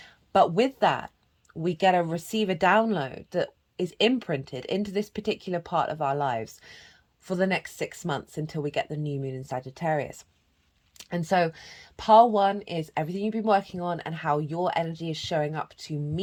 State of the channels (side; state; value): both; identical; correlation 1.00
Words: But with that, we get a receive a download that is imprinted into this particular part of our lives for the next 6 months until we get the new moon in Sagittarius. And so pile 1 is everything you've been working on and how your energy is showing up to